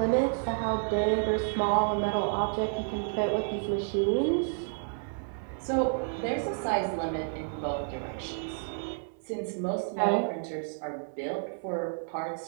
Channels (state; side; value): silent; left; 58 dB below the other